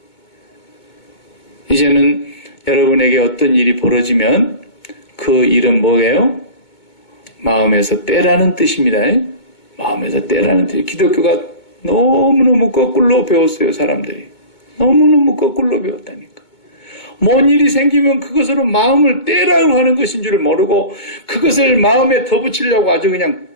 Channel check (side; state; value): right; late; 2.2 ms